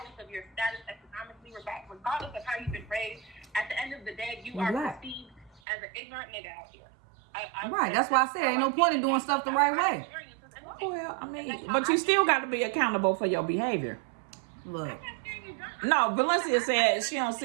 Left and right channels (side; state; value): left; drops out; at 5.6 s